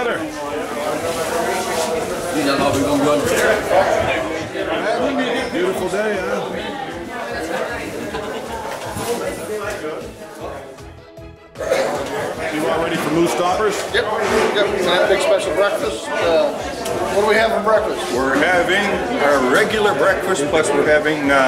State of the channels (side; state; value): both; identical; correlation 1.00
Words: Beautiful day, huh? You all ready for moose stoppers? Yep. Have a big special breakfast. What do we have for breakfast? We're having a regular breakfast, plus we're having